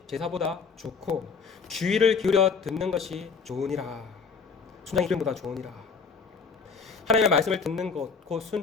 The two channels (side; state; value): right; quieter; 5.4 dB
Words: 제사보다 좋고 주의를 기울여 듣는 것이 좋으니라. 순장의 기름보다 좋으니라. 하나님의 말씀을 듣는 것, 곧